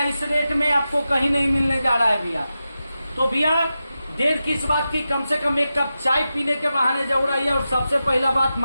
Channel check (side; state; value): both; inverted; correlation -0.91